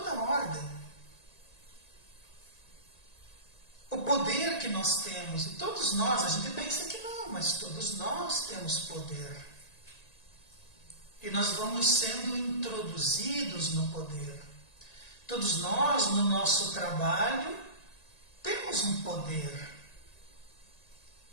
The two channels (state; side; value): late; right; 1.9 ms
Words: ordem, o poder que nós temos, e todos nós, a gente pensa que não, mas todos nós temos poder. E nós vamos sendo introduzidos no poder. Todos nós, no nosso trabalho, temos um poder.